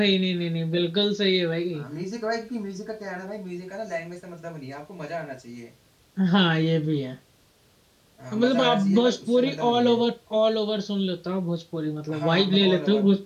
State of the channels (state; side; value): identical; both; correlation 1.00